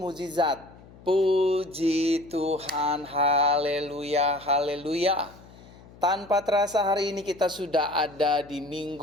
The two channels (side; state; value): left; noise; hum, 22 dB below the sound